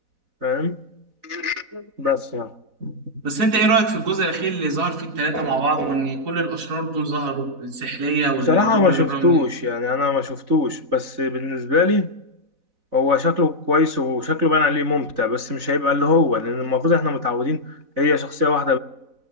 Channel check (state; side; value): late; left; 4.0 ms